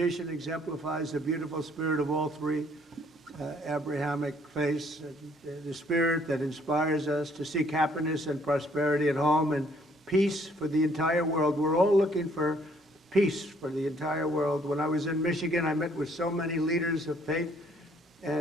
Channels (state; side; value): normal; both; correlation 0.63